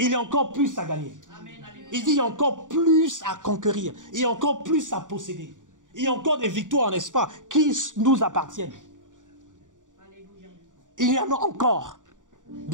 y a encore plus à gagner. Il dit, il y a encore plus à conquérir. Il y a encore plus à posséder. Il y a encore des victoires, n'est-ce pas, qui nous appartiennent. Il y en a encore,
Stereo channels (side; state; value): left; late; 0.87 ms